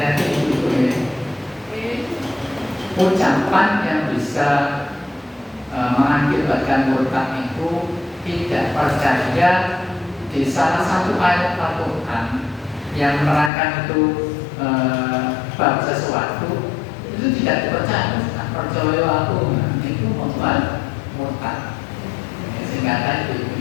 ibu-ibu ini. Ucapan yang bisa mengakibatkan murtad itu tidak percaya di salah satu ayat Al-Quran yang menerangkan itu bab sesuatu itu tidak dipercaya. Percaya aku itu membuat murtad. Sehingga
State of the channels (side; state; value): right; drops out; at 13.5 s